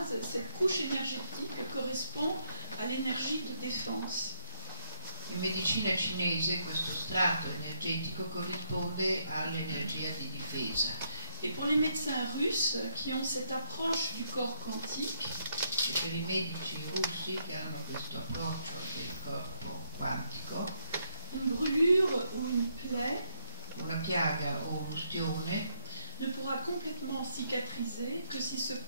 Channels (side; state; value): both; inverted; correlation -0.76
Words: cette couche énergétique correspond à l'énergie de défense. In medicina cinese questo strato energetico corrisponde all'energia di difesa. Et pour les médecins russes qui ont cette approche du corps quantique, E per i medici russi che hanno questo approccio del corpo quantico, une brûlure ou une plaie una piaga o un'ustione ne pourra complètement cicatriser que si ce